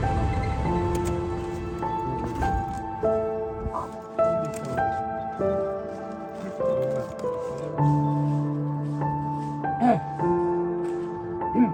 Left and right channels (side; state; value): both; identical; correlation 1.00